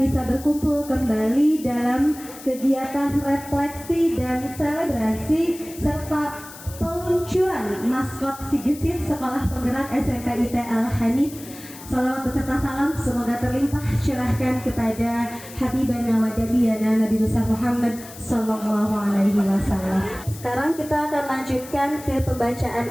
bisa berkumpul kembali dalam kegiatan refleksi dan selebrasi serta peluncuran maskot Si Gesit Sekolah Penggerak SMP IT Al-Hanif. Salawat beserta salam semoga terlimpah curahkan kepada Habibana wa Nabiyana Nabi besar Muhammad Sallallahu Alaihi Wasallam. Sekarang kita akan lanjutkan ke pembacaan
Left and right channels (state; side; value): noise; left; hiss, 16 dB below the sound